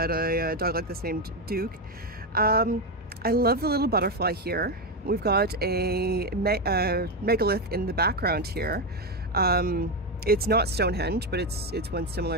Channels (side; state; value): both; normal; correlation 0.09